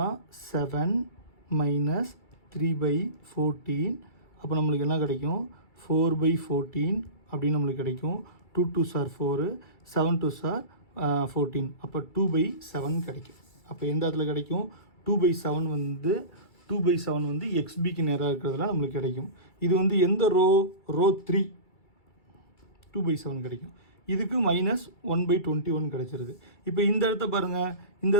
7 - 3/14. அப்போ நம்மளுக்கு என்ன கிடைக்கும், 4/14 அப்படின்னு நம்மளுக்கு கிடைக்கும். 2 2s are 4, 7 2s are 14. அப்போ 2/7 கிடைக்கும். அப்போ எந்த இடத்துல கிடைக்கும், 2/7 வந்து 2/7 வந்து XBக்கு நேராக இருக்கிறதுல நம்மளுக்கு கிடைக்கும். இது வந்து எந்த ரோ 3 2/7 கிடைக்கும். இதுக்கு -1/21 கிடைச்சிருது. இப்போ இந்த இடத்த பாருங்கள், இந்த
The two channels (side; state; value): right; late; 2.3 ms